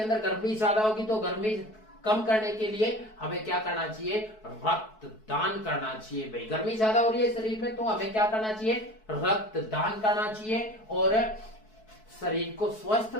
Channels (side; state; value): right; late; 4.6 ms